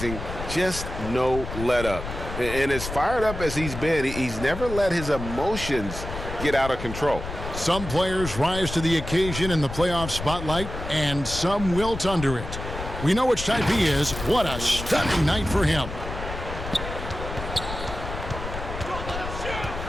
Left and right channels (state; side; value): noise; left; rumble, 8 dB below the sound